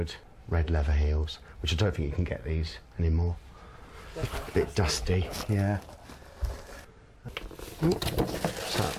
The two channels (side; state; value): both; identical; correlation 1.00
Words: red leather heels, which I don't think you can get these anymore. A bit dusty, yeah. So,